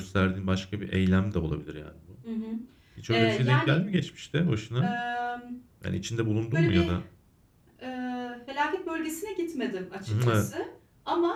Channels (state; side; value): identical; both; correlation 1.00